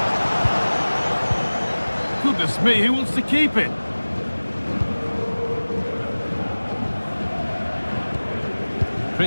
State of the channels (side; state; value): both; inverted; correlation -1.00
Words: Goodness me, who wants to keep it?